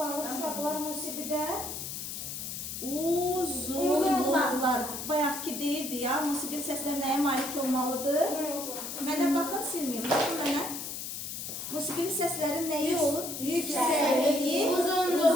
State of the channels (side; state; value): left; noise; hiss, 6 dB below the sound